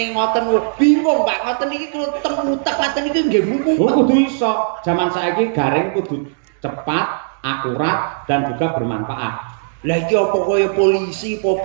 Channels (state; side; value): silent; left; digital silence